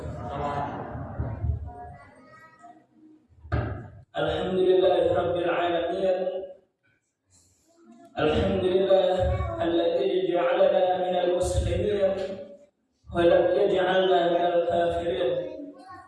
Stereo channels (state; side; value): identical; both; correlation 1.00